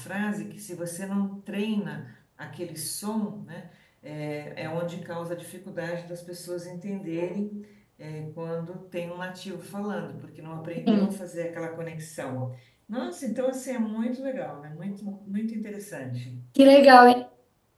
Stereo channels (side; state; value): both; identical; correlation 1.00